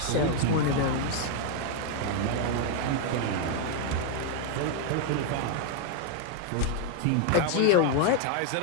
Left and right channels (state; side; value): different; both; correlation 0.00